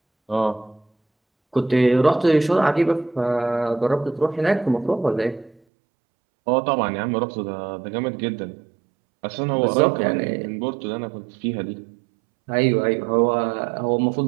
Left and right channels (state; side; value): drops out; left; at 5.6 s